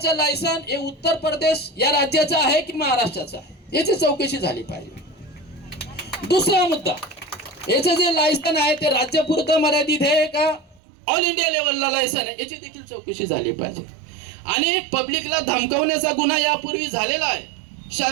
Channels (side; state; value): left; drops out; at 10.8 s